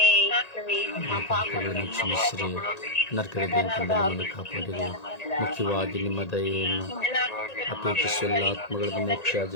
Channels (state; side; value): late; right; 1.9 ms